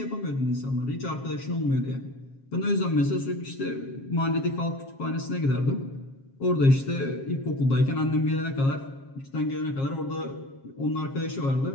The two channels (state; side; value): late; right; 7.4 ms